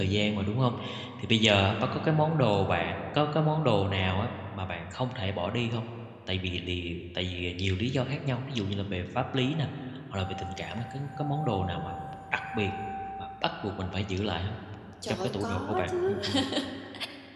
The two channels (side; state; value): both; identical; correlation 1.00